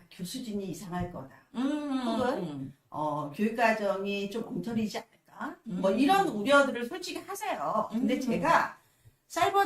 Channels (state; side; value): identical; both; correlation 1.00